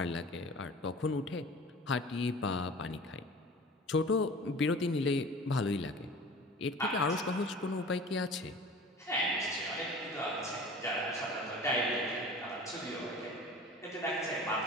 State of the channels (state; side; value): normal; both; correlation 0.40